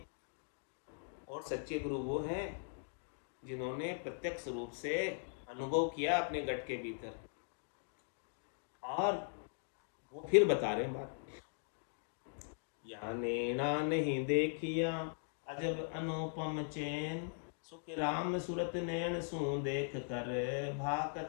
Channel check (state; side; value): silent; right; digital silence